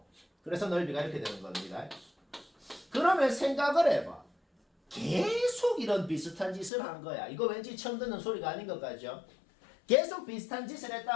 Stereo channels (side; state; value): right; drops out; at 6.7 s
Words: 그래서 넓이가 이렇게 되는 겁니다. 그러면 생각을 해봐. 계속 계속 이런 비슷한 짓을 한 거야. 이거 왠지 처음 듣는 소리가 아닌 것 같죠? 계속 비슷한 짓을